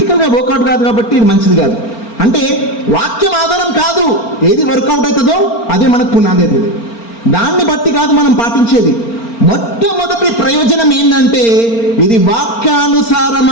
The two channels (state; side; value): late; right; 4.4 ms